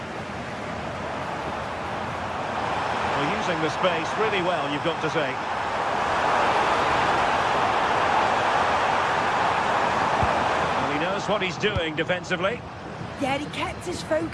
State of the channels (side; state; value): both; identical; correlation 1.00